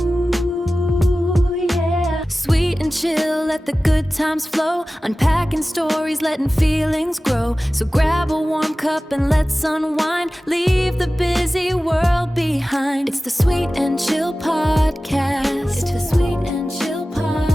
yeah. Sweet and chill, let the good times flow. Unpacking stories, letting feelings grow. So grab a warm cup and let's unwind. Leave the busy world behind. It's the Sweet and Chill Podcast.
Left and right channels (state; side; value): normal; both; correlation 0.96